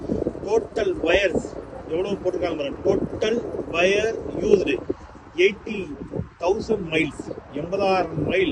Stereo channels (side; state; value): both; identical; correlation 1.00